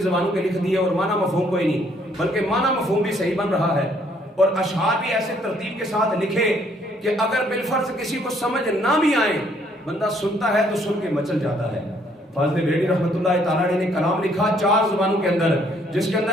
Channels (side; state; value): both; normal; correlation 0.65